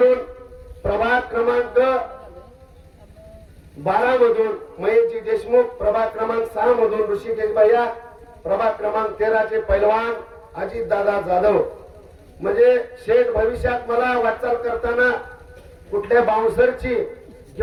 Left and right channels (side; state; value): both; identical; correlation 1.00